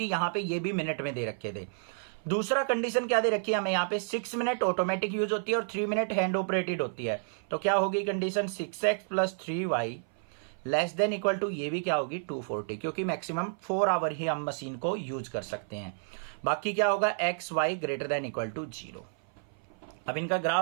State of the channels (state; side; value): silent; left; 55 dB below the other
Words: यहां पे ये भी मिनट में दे रखे थे। दूसरा कंडीशन क्या दे रखी है हमें यहाँ पे, 6 मिनट ऑटोमेटिक यूज होती है और 3 मिनट हैंड ऑपरेटेड होती है। तो क्या होगी condition, 6x plus 3y less than equal to, ये भी क्या होगी 240, क्योंकि मैक्सिमम 4 आवर ही हम मशीन को यूज कर सकते हैं। बाकी क्या होगा, x Y greater than equal to 0। अब इनका